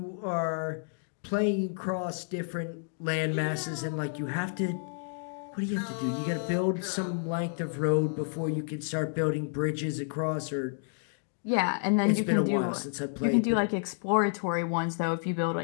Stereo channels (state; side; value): silent; right; digital silence